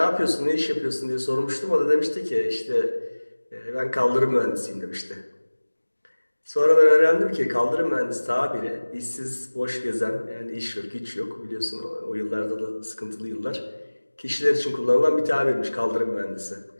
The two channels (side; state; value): both; inverted; correlation -1.00